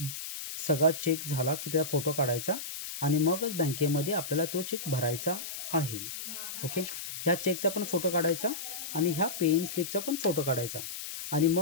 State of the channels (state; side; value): noise; left; hiss, 7 dB below the sound